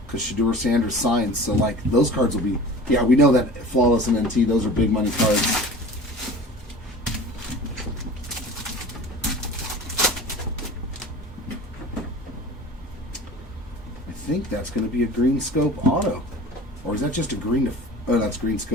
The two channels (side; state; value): both; normal; correlation 0.39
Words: Because Shedeur Sanders signed. So, like, those cards will be... Yeah, we know that Flawless and NT, those are big money cards. I think that's going to be a green scope auto. Or is that just a green... Oh, that's green